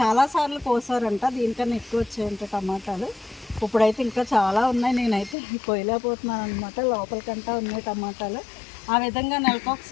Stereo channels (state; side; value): drops out; right; at 5.4 s